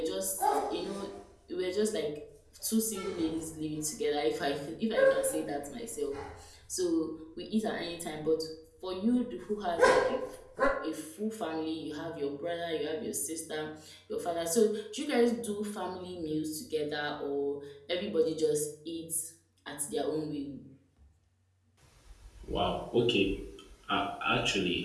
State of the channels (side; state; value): both; identical; correlation 1.00